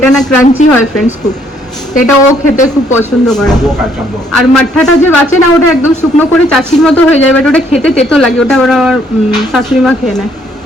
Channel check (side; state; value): both; normal; correlation 0.67